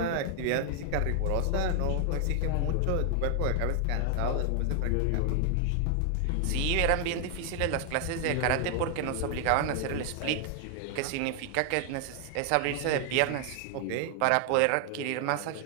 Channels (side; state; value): both; different; correlation 0.00